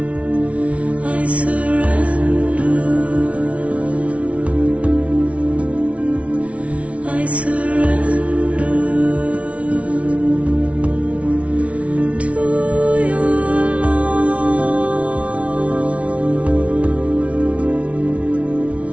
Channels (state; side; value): late; left; 0.064 ms